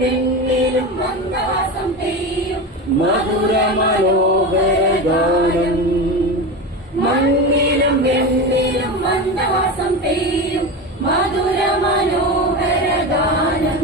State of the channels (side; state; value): both; normal; correlation 0.23